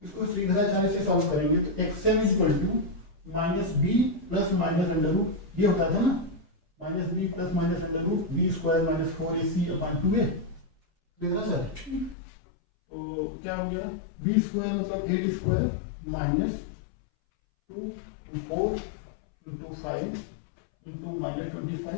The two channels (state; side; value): drops out; right; at 12.2 s